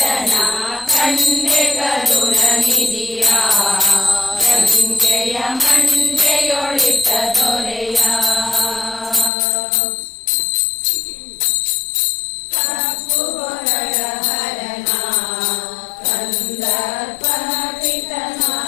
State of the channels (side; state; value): right; drops out; at 9.3 s